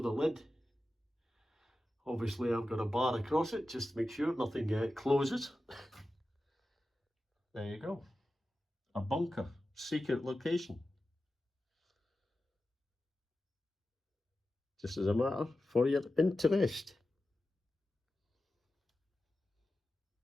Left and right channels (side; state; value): both; normal; correlation 0.93